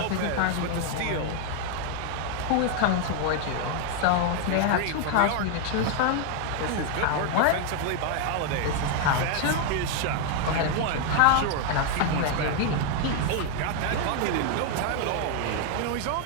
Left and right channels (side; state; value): both; different; correlation 0.00